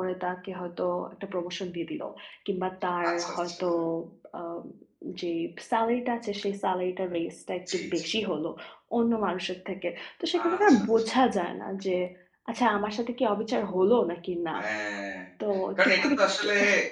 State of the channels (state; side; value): identical; both; correlation 1.00